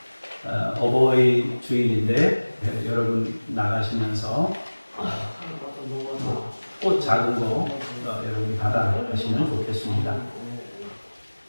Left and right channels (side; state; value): both; inverted; correlation -1.00